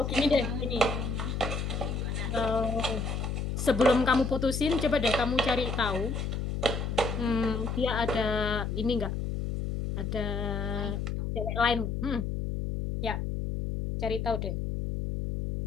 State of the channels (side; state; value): left; noise; hum, 2 dB below the sound